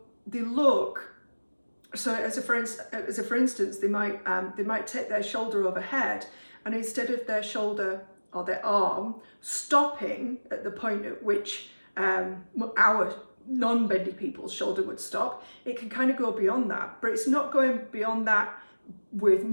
as for instance, they might take their shoulder overhead, and instead of their shoulder or their arm stopping at the point at which our non-bendy people's shoulder would stop, it can kind of go beyond that. But it's not going beyond that with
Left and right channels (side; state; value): both; inverted; correlation -1.00